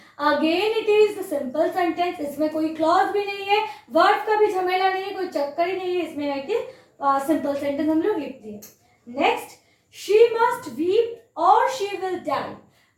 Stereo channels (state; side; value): identical; both; correlation 1.00